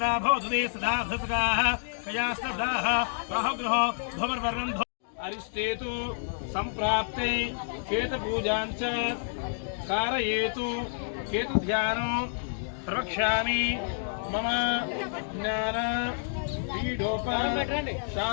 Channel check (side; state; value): right; silent; digital silence